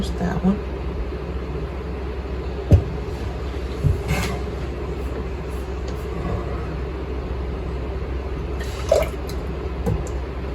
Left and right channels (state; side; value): identical; both; correlation 1.00